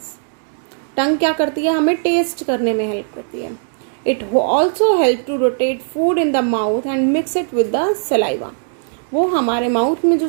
Tongue क्या करती है? हमें taste करने में help करती है. It also helps to rotate food in the mouth and mix it with the saliva. वो हमारे माउथ में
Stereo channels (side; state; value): left; silent; digital silence